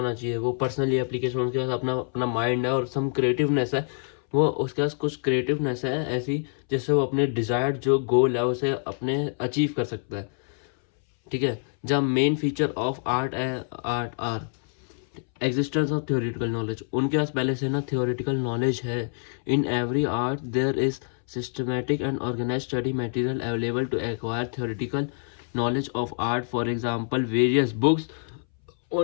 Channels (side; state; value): right; silent; 61 dB below the other